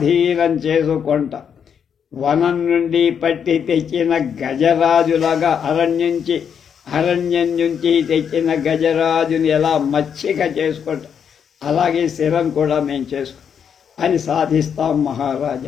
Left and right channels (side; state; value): right; quieter; 7.6 dB